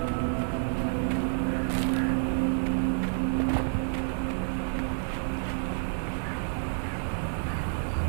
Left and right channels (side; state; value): left; silent; digital silence